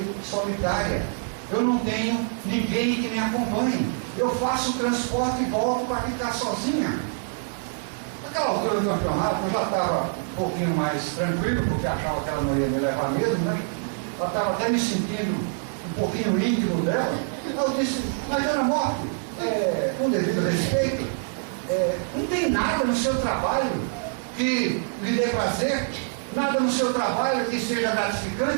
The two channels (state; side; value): silent; left; digital silence